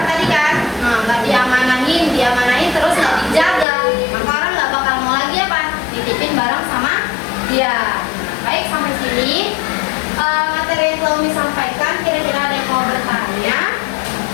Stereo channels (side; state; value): right; drops out; at 3.7 s